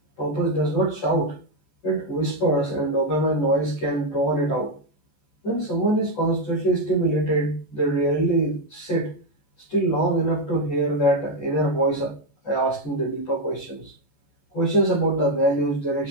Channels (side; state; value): right; late; 14 ms